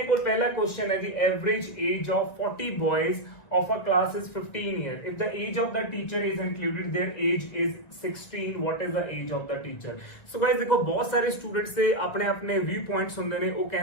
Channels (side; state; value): right; late; 1.9 ms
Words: ਕੋਲ ਪਹਿਲਾ ਕੁਐਸਚਨ ਹੈ ਜੀ average age of 40 ਬॉयज of a class is 15 years. If the age of the teacher is included, their age is 16. What is the age of the teacher? So guys देखो बहुत सारे students से अपने अपने व्यू पॉइंट्स ਹੁੰਦੇ ਨੇ। ਉਹ